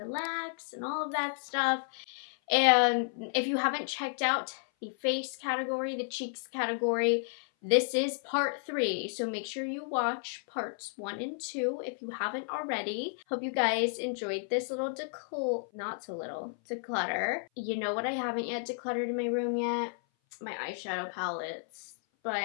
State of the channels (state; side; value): silent; right; 56 dB below the other